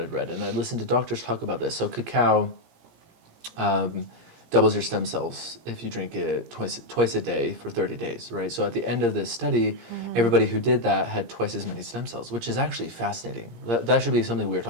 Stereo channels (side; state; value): left; late; 17 ms